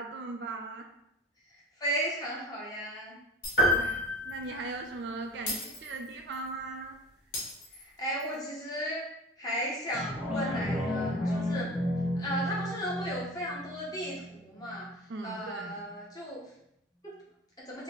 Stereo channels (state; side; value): normal; both; correlation 0.37